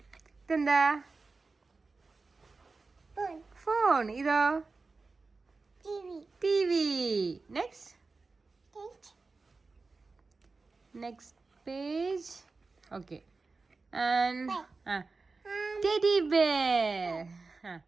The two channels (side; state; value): left; quieter; 3.9 dB